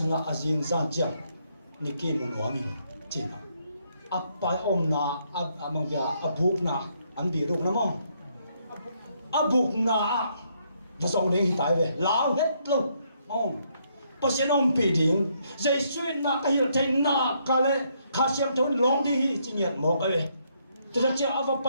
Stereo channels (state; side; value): inverted; both; correlation -0.73